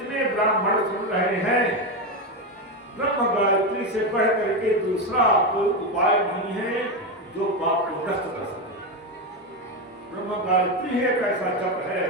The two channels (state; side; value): normal; both; correlation 0.12